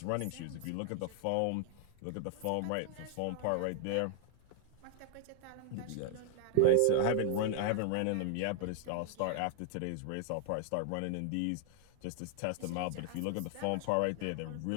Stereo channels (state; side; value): different; both; correlation 0.00